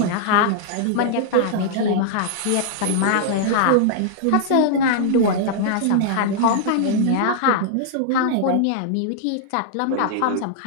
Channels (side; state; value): both; different; correlation -0.01